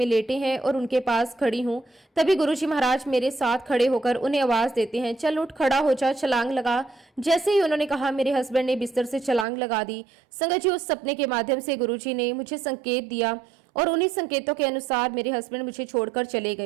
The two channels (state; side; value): drops out; left; at 9.5 s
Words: लेटे हैं और उनके पास खड़ी हूँ। तभी गुरुजी महाराज मेरे साथ खड़े होकर उन्हें आवाज देते हैं, चल उठ, खड़ा हो जा, छलांग लगा। जैसे ही उन्होंने कहा, मेरे हस्बैंड ने बिस्तर से छलांग लगा दी। संगत जी, उस सपने के माध्यम से गुरुजी ने मुझे संकेत दिया और उन्हीं संकेतों के अनुसार मेरे हस्बैंड मुझे छोड़कर चले